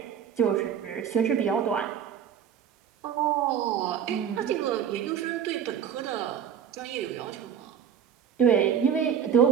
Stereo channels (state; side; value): quieter; left; 8.2 dB